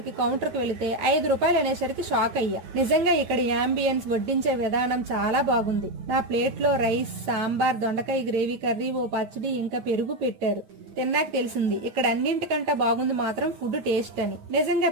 కౌంటర్ కి వెళితే 5 రూపాయలు అనేసరికి షాక్ అయ్యా. నిజంగా ఇక్కడ యాంబియన్స్, వడ్డించే విధానం చాలా బాగుంది. నా ప్లేట్ లో రైస్, సాంబార్, దొండకాయ గ్రేవీ కర్రీ, ఓ పచ్చడి, ఇంకా పెరుగు పెట్టారు. తిన్నాక తెలిసింది ఇక్కడ అన్నింటికంటే బాగుంది మాత్రం ఫుడ్ టేస్ట్ అని. నిజంగా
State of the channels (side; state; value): left; late; 9.1 ms